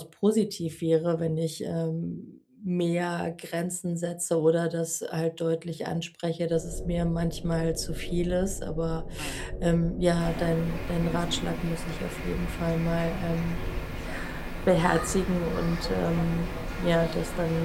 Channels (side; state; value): both; identical; correlation 1.00